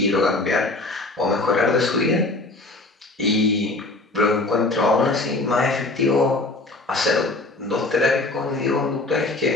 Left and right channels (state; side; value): quieter; right; 3.0 dB